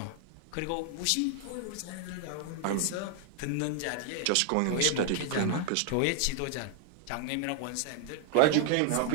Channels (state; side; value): different; both; correlation 0.00